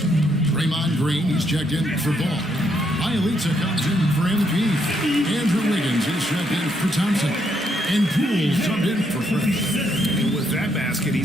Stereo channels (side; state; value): both; normal; correlation 0.75